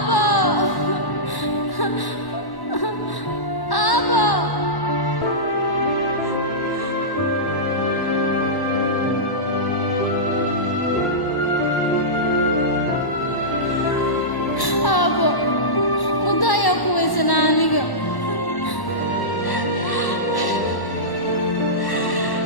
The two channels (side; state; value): right; late; 1.1 ms